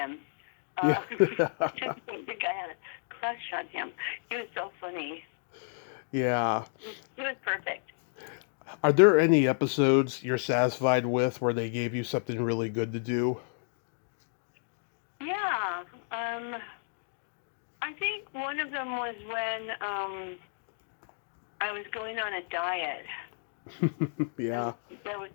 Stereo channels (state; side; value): silent; right; digital silence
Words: yeah, I just don't think I had a crush on him. He was so funny. yeah. He was perfect. Are there any episodes you're satisfied with where they gave you something really good to do? Yeah. I think one of them was when I was going on a diet. Yeah. And there was